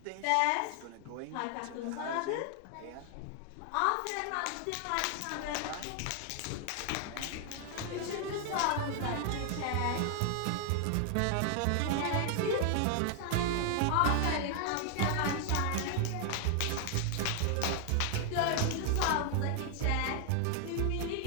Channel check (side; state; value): both; different; correlation 0.00